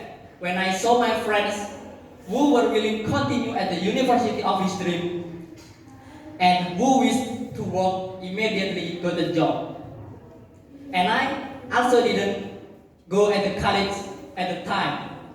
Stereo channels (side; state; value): both; identical; correlation 1.00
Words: when I saw my friends who were willing to continue at the university of his dream and who wished to work immediately got a job. And I also didn't go at the college at the time,